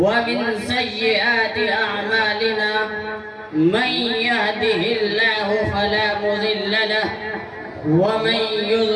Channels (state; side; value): identical; both; correlation 1.00